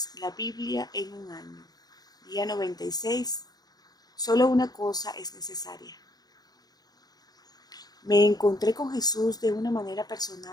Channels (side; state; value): right; late; 0.19 ms